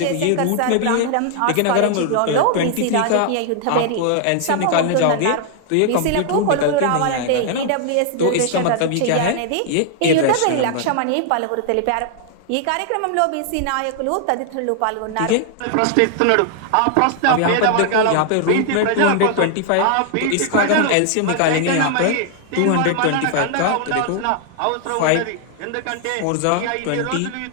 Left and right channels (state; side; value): different; both; correlation 0.00